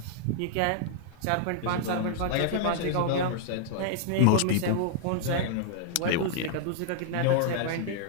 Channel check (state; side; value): different; both; correlation -0.01